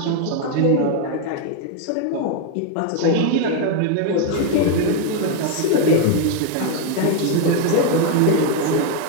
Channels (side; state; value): both; different; correlation 0.01